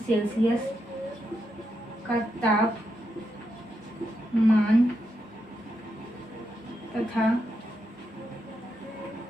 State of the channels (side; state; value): both; normal; correlation 0.83